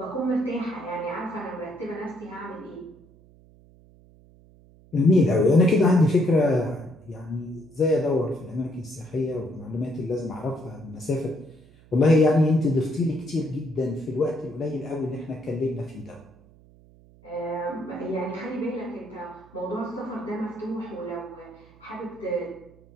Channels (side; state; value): right; noise; hum, 26 dB below the sound